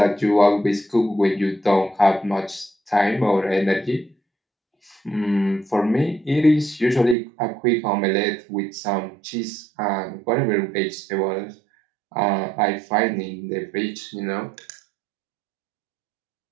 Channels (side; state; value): left; drops out; at 7.2 s